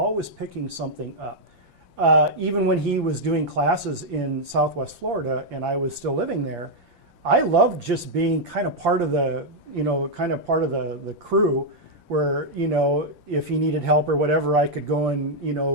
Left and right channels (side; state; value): left; late; 5.8 ms